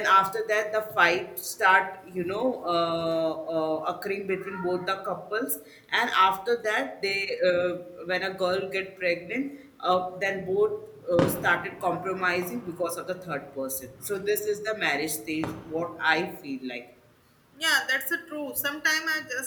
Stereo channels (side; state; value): both; identical; correlation 1.00